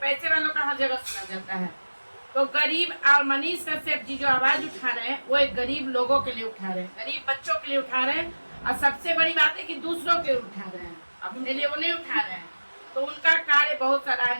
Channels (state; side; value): inverted; both; correlation -1.00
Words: वालों का हर जगह सुना जाता है। तो गरीब, और मनीष कश्यप जी जो आवाज उठा रहे हैं वो एक गरीब लोगों के लिए उठा रहे हैं, गरीब बच्चों के लिए उठा रहे हैं। और सबसे बड़ी बात है कि दूसरों के लिए उठा रहे हैं, अपने लिए वो नहीं उठा रहे हैं। तो उनका कार्य बहुत